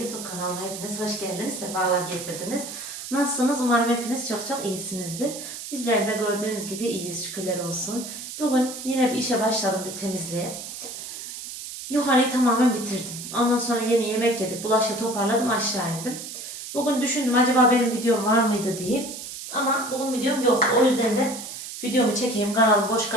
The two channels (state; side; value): noise; right; hiss, 9 dB below the sound